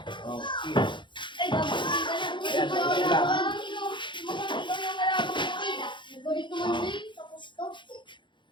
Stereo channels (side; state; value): right; late; 0.23 ms